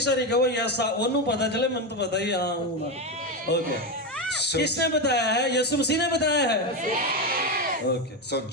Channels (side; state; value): both; normal; correlation 0.12